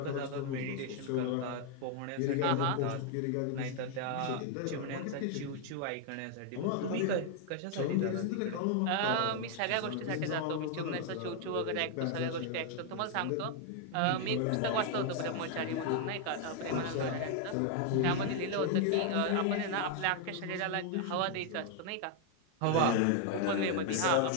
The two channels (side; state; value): both; different; correlation 0.00